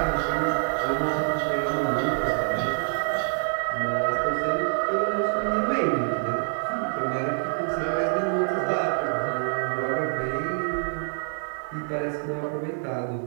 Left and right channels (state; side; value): silent; left; digital silence